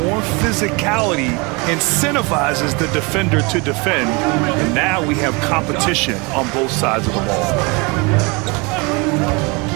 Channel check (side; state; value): left; quieter; 28.4 dB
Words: more physicality incentivizes the defender to defend, and now we have competition on both sides of the ball.